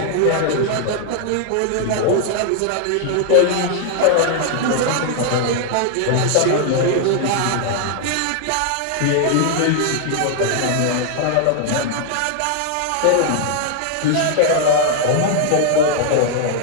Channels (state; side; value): different; both; correlation 0.00